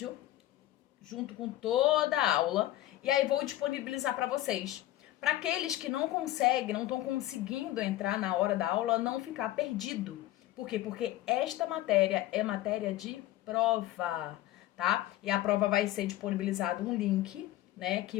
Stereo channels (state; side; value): quieter; right; 15.0 dB